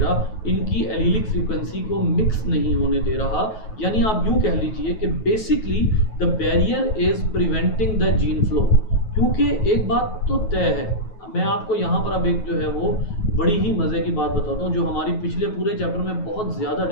इनकी एलीलिक फ्रीक्वेंसी को मिक्स नहीं होने दे रहा। यानी आप यूं कह लीजिए कि basically the barrier is preventing the gene flow. क्योंकि एक बात तो तय है, मैं आपको यहाँ पर अब एक जो है वो बड़ी ही मज़े की बात बताता हूँ जो हमारी पिछले पूरे चैप्टर में बहुत ज़्यादा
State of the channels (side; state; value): right; late; 9.3 ms